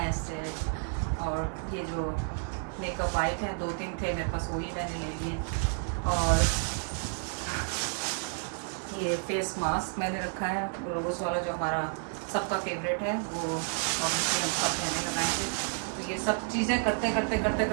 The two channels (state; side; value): silent; left; 57 dB below the other